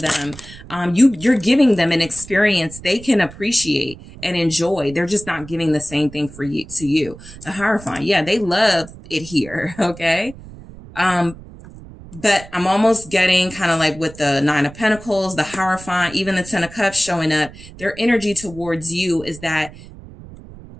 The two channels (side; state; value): right; noise; rumble, 17 dB below the sound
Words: You're giving them an experience they can appreciate and enjoy. They're just not giving the same thing to you. The Hierophant, yeah, they love it here. Okay. But I'm almost getting kind of like with the Nine of Pentacles, the Hierophant, even the Ten of Cups showing up. Their energy towards you is that